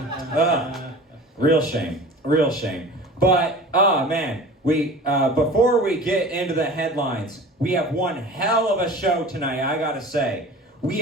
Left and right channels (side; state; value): both; normal; correlation 0.39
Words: Real shame. But, man, before we get into the headlines, we have one hell of a show tonight, I gotta say. We